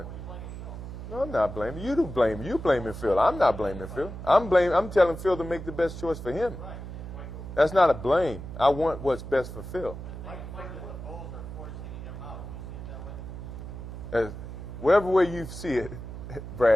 you blaming Phil. No, I'm not blaming. You do blame. You blaming Phil. I'm not blaming Phil. I'm telling Phil to make the best choice for him. That's not a blame. I want what's best for Phil. Mike, the Bulls are forcing him out. You see it that way? Whatever way you see it,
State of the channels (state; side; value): noise; right; hum, 10 dB below the sound